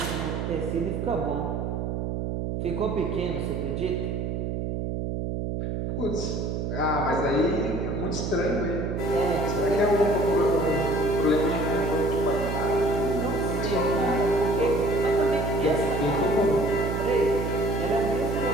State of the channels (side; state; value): right; noise; hum, 2 dB below the sound